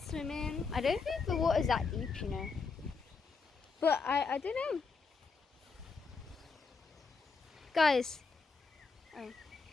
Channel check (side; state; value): right; quieter; 4.7 dB